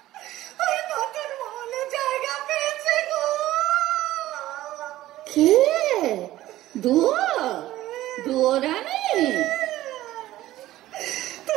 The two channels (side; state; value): left; quieter; 15.3 dB